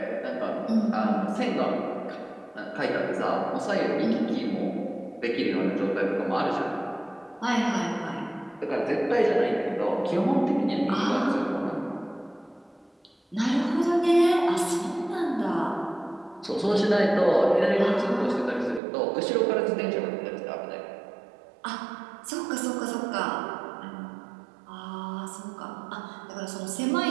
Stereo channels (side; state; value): left; drops out; at 18.8 s